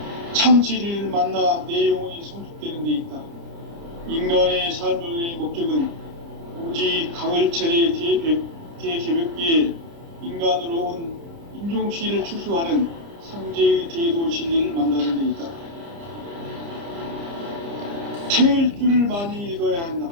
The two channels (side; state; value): left; late; 30 ms